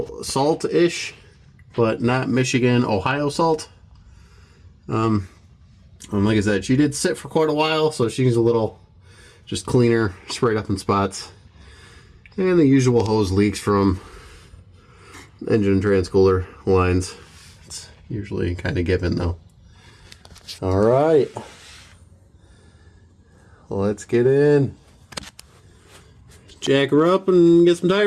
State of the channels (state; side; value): identical; both; correlation 1.00